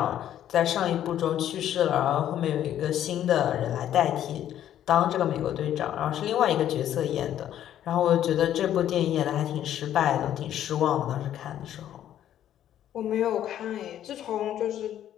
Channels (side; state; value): right; quieter; 11.2 dB